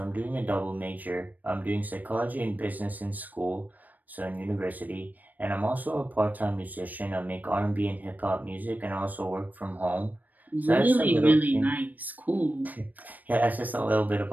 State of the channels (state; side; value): late; left; 0.083 ms